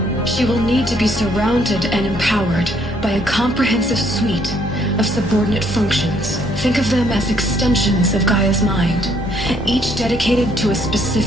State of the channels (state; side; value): normal; both; correlation 0.67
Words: She will need to be surrounded and empowered by a comprehensive suite of subordinate functions. Think of them as extensions of Gaia's mind, each dedicated to a